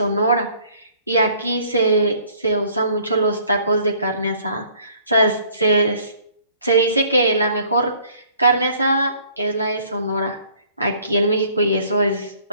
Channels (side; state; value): both; inverted; correlation -0.58